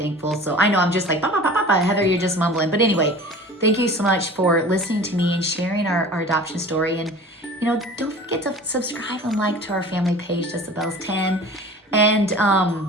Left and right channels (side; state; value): both; normal; correlation 0.41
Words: So I know I'm just like, bah, bah, bah, bah, bah. Heather, you're just mumbling. But anyway, thank you so much for listening to me and sharing our adoption story. And, you know, don't forget to subscribe and like to our family page, Just the Bells 10. And